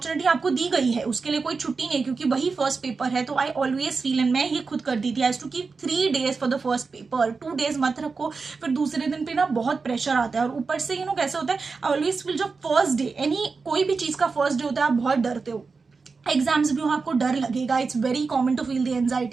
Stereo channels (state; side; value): quieter; left; 4.6 dB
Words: आपको दी गई है, उसके लिए कोई छुट्टी नहीं, क्योंकि वही फर्स्ट पेपर है। तो आई ऑलवेज फील, एंड मैं ये खुद कर दी थी, I to keep 3 days for the first paper. 2 days मत रखो, फिर दूसरे दिन पे ना बहुत प्रेशर आता है। और ऊपर से कैसे होता है, आई ऑलवेज फील जब फर्स्ट डे, कोई भी चीज का फर्स्ट डे होता है आप बहुत डरते हो, एग्जाम्स भी हो आपको डर लगेगा, it's very common to feel the